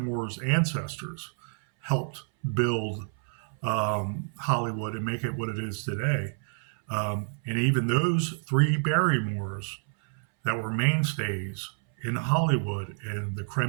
ancestors helped build Hollywood and make it what it is today. And even those three Barrymores that were mainstays in Hollywood and the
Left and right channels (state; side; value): silent; left; 59 dB below the other